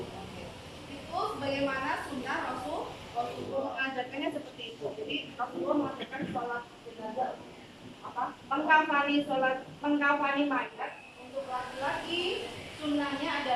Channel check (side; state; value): both; identical; correlation 1.00